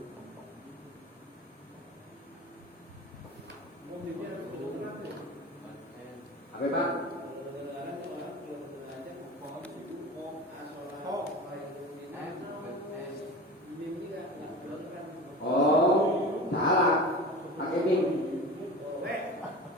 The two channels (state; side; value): normal; both; correlation 0.33